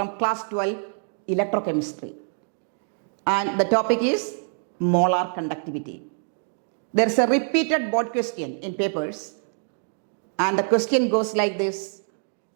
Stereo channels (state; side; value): silent; left; 62 dB below the other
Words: class 12 electrochemistry, and the topic is molar conductivity. There is a repeated board question in papers, and the question goes like this: